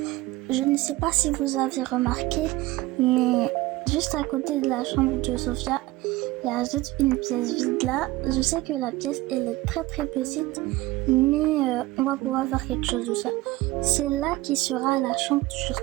Je ne sais pas si vous avez remarqué, mais juste à côté de la chambre de Sophia, il y a juste une pièce vide là. Je sais que la pièce elle est très très petite, mais on va pouvoir faire quelque chose de ça. C'est là qui sera la chambre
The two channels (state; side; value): quieter; left; 18.9 dB